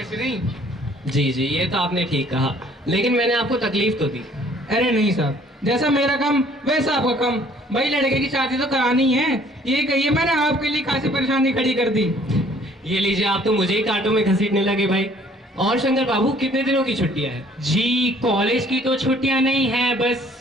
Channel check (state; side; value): normal; both; correlation 0.58